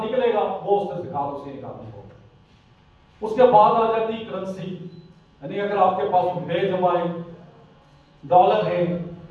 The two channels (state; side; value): identical; both; correlation 1.00